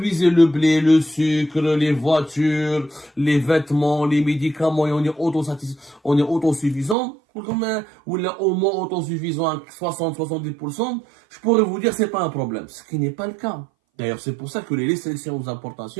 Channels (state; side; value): drops out; left; at 7.0 s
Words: le blé, le sucre, les voitures, les vêtements, les médicaments, et on est autosuffisant, ou là, au moins autosuffisant à 60-70%, je pourrais vous dire c'est pas un problème. Ce qui n'est pas le cas. D'ailleurs, c'est pour ça que les restrictions aux